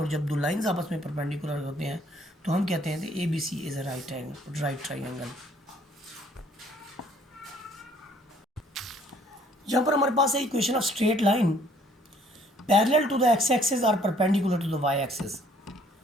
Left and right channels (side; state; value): both; normal; correlation 0.61